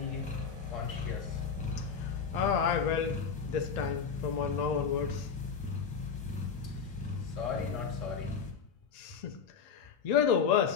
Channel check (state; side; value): quieter; right; 6.3 dB